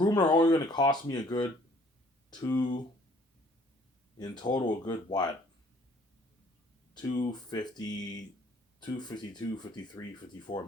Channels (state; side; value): normal; both; correlation 0.58